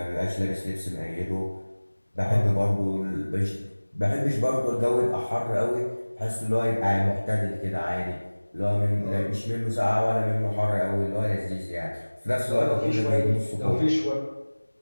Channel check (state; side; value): inverted; both; correlation -1.00